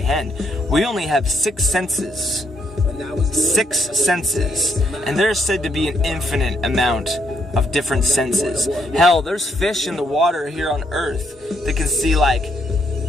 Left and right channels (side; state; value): both; normal; correlation 0.74